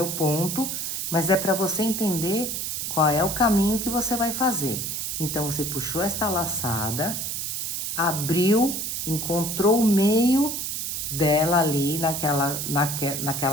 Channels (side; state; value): right; noise; hiss, 3 dB below the sound